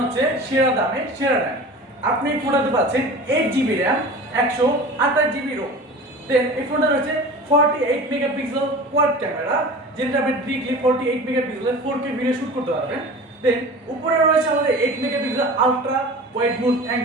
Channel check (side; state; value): both; normal; correlation 0.37